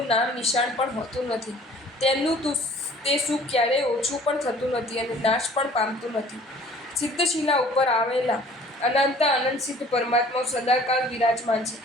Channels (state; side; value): normal; both; correlation 0.51